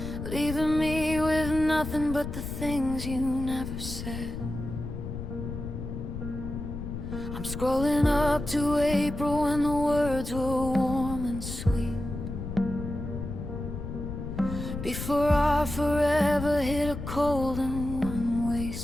leaving me with nothing but the things you never said. I'm scrolling up to April when the words were warm and sweet, before our forever hit a cold and one-way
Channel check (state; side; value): noise; left; rumble, 7 dB below the sound